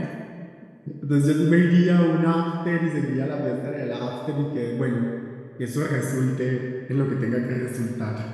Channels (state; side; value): identical; both; correlation 1.00